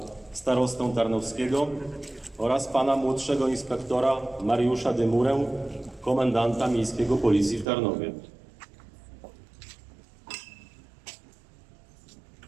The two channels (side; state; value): left; drops out; at 7.7 s